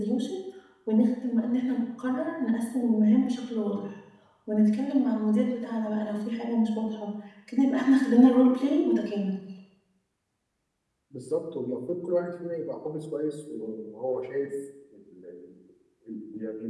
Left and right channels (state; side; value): identical; both; correlation 1.00